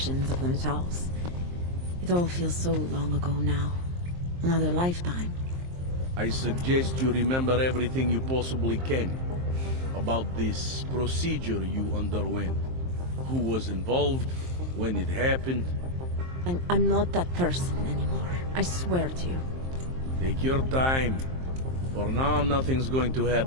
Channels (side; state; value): left; late; 23 ms